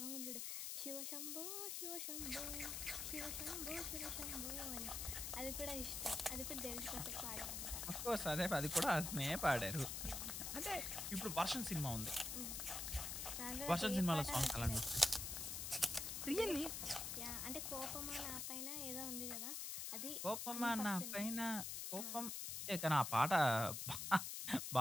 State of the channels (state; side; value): noise; left; hiss, 3 dB below the sound